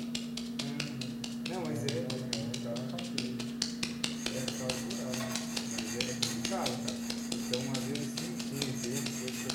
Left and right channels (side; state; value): both; identical; correlation 1.00